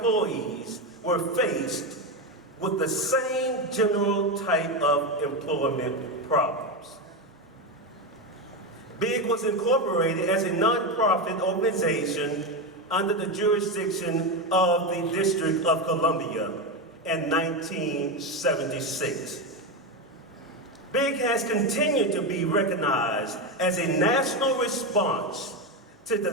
were faced with the same general type of employment problems. BIG was incorporated as a nonprofit organization under the jurisdiction of the District of Columbia in 1976. BIG has continued to be recognized as a national response to the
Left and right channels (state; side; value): normal; both; correlation 0.12